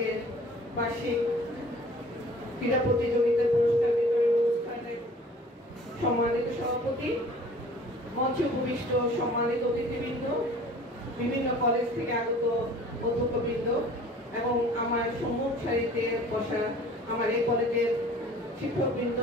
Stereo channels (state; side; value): normal; both; correlation 0.49